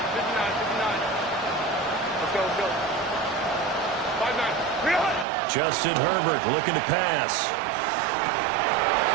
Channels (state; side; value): drops out; left; at 5.2 s